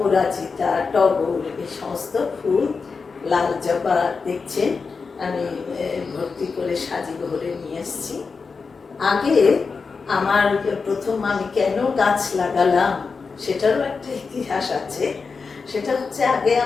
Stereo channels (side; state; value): right; quieter; 4.9 dB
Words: টগর, এই সমস্ত ফুল, লাল জবা দেখছেন আমি ভর্তি করে সাজি ভরে নিয়ে এসেছি। আগে আমার প্রথম আমি কেন গাছ লাগালাম সেটারও একটা ইতিহাস আছে। সেটা হচ্ছে, আগে